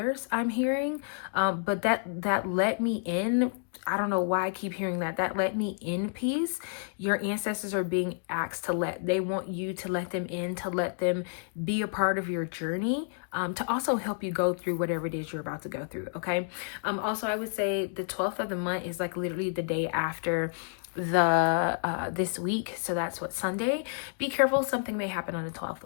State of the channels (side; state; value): right; silent; digital silence